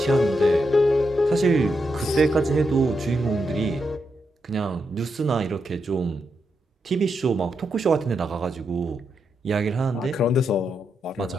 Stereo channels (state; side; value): normal; both; correlation 0.83